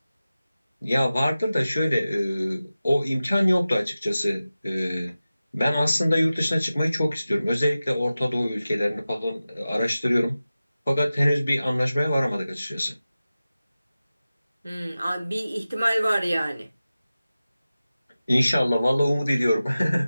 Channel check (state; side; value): inverted; both; correlation -0.95